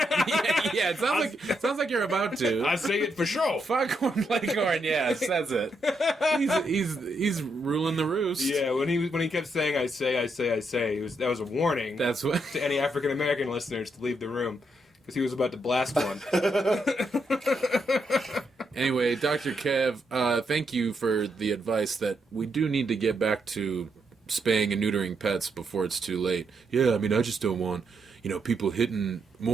Yeah, it sounds like you're about to. I say it for sure. Foghorn Leghorn, yeah, says it. He's ruling the roost. Yeah, when he kept saying I say, that was a warning. That's what to any African American listeners to leave the room because he was about to blast one. Anyway, Dr. Kev, thank you for the advice that we do need to get back to spaying and neutering pets before it's too late. Yeah, I mean, I just don't want, people hitting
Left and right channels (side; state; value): both; normal; correlation 0.79